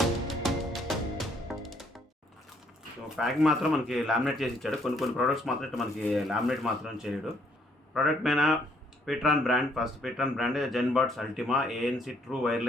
Packing మాత్రం మనకి లామినేట్ చేసి ఇచ్చాడు. కొన్ని ప్రోడక్ట్స్ మాత్రం మనకి లామినేట్ మాత్రం చేయడు. ప్రోడక్ట్ పైన pTron brand, first pTron brand Zenbuds Ultima ANC true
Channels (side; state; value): both; normal; correlation 0.67